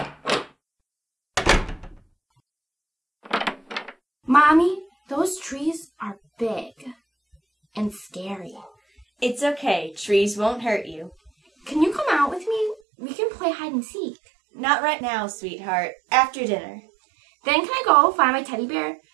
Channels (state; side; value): drops out; left; at 12.8 s